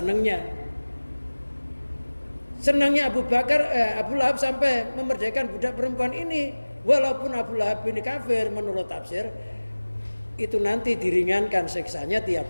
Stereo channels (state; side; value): inverted; both; correlation -1.00